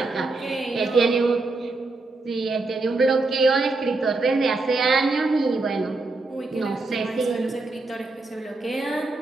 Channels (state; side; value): quieter; left; 3.4 dB